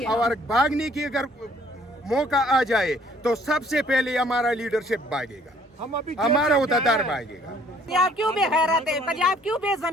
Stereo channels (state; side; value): normal; both; correlation 0.60